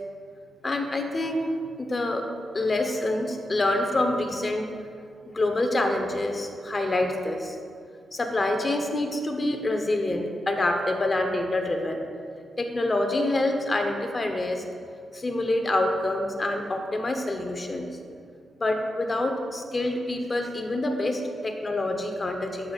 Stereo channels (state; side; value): normal; both; correlation 0.89